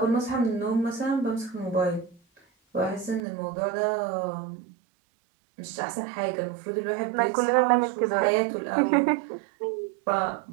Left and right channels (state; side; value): drops out; left; at 3.2 s